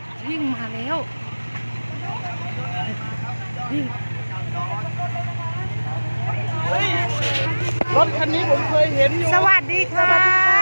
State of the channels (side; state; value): both; inverted; correlation -1.00